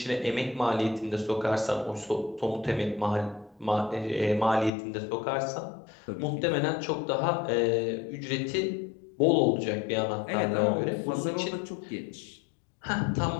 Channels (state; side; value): drops out; right; at 4.7 s